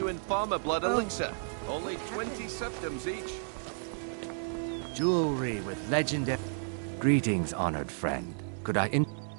farmer blood elixir. Only 20 septims each. Jewelry with legendary... Greetings, honored friend. Could I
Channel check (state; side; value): silent; left; digital silence